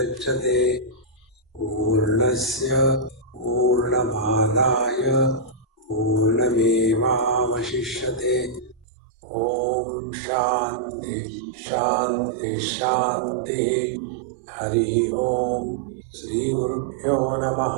Purnasya Purnamadaya Purnamevavashishyate. Om Shanti Shanti Shanti. Hari Om. Shri Gurubhyo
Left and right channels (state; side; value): drops out; left; at 8.8 s